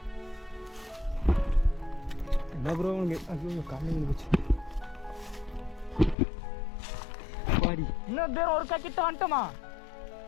என்ன ப்ரோ உனக்கு? ஐயோ காலையில் போச்சு பாடி. இன்னும் பேர் ஒரு கிட்ட வந்துட்டோமா?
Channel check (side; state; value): right; drops out; at 6.2 s